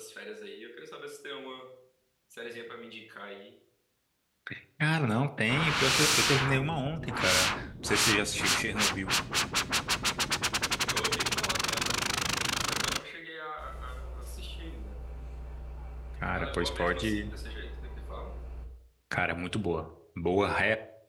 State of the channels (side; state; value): both; identical; correlation 1.00